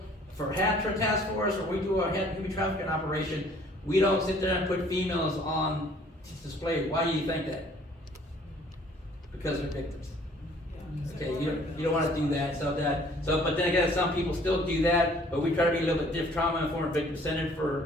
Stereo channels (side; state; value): both; normal; correlation 0.56